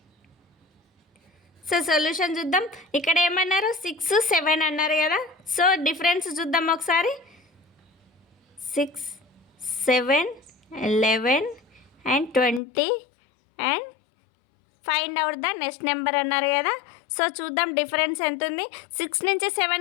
So solution చూద్దాం. ఇక్కడ ఏమన్నారు, 6, 7 అన్నారు కదా. సో డిఫరెన్స్ చూద్దాం ఒకసారి. 6, 7, 11 and 20 and find out the next number అన్నారు కదా. సో చూద్దాం డిఫరెన్స్ ఎంత ఉంది. 6 నుంచి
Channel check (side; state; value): right; drops out; at 12.6 s